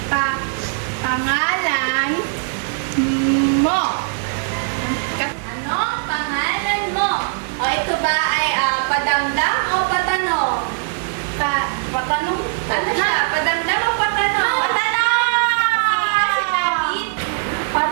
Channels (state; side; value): silent; left; 66 dB below the other